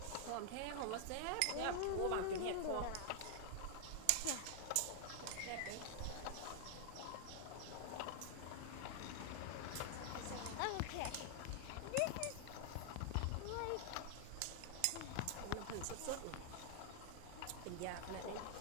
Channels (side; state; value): both; different; correlation 0.00